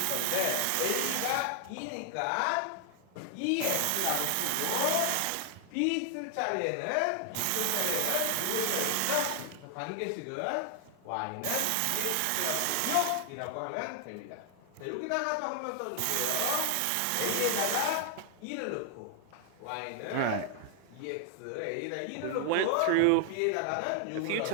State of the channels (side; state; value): both; different; correlation 0.00